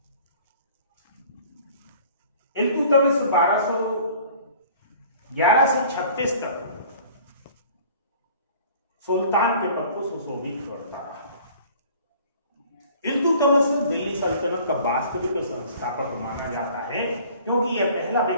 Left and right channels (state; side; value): inverted; both; correlation -0.49